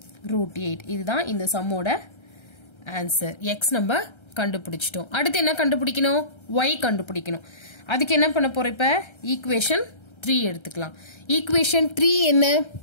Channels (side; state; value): right; late; 1.3 ms